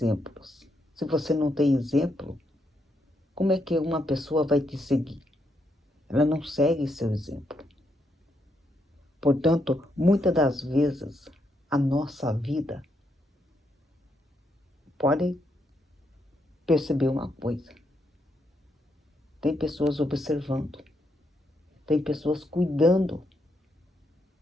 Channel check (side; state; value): both; normal; correlation 0.78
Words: Se você não tem exemplo, como é que uma pessoa vai te seguir? Ela não segue seu exemplo. Portanto, muitas das vezes, a nossa vida pode perceber uma coisa. Tem pessoas observando. Tem pessoas cuidando